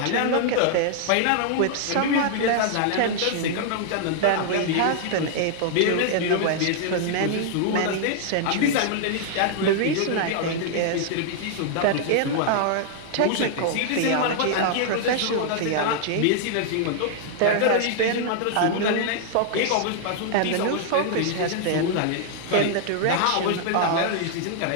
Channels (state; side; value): different; both; correlation -0.01